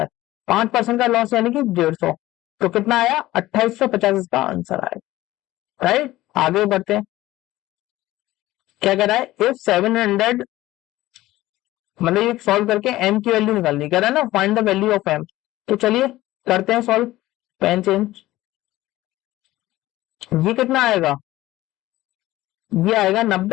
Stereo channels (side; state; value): right; quieter; 16.6 dB